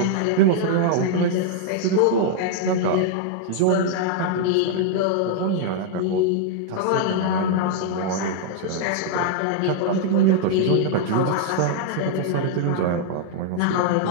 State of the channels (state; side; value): different; both; correlation -0.01